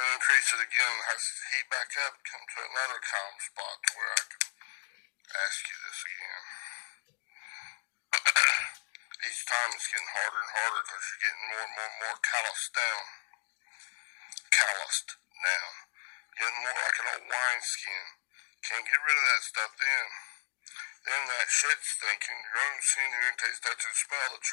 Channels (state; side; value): silent; right; digital silence